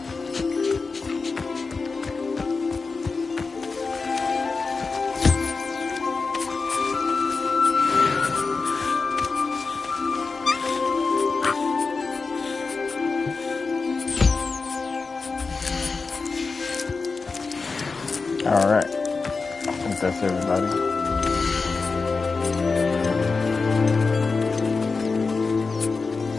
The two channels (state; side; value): quieter; right; 4.3 dB